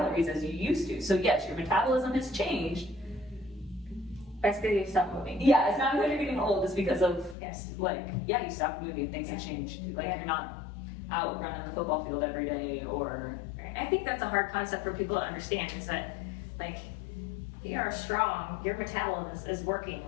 as you used to. So yes, your metabolism has changed. That's because you stop moving. Yeah, it's not because you're getting old, it's because of, Yes. like, yeah, you stop moving, things have changed. Like, Yeah. you're not out running the football field every day, or... I think that's a hard concept for people to understand, is that, like, if you are strong, your metabolism is working.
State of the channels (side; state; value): right; drops out; at 7.4 s